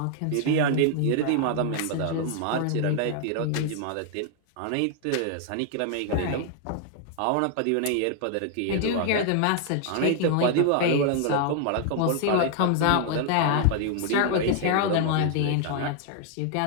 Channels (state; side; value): different; both; correlation 0.00